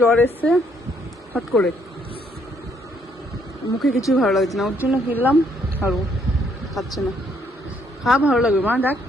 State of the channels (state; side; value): normal; both; correlation 0.69